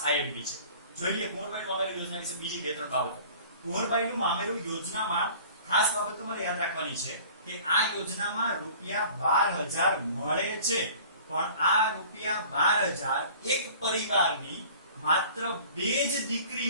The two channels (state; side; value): inverted; both; correlation -0.46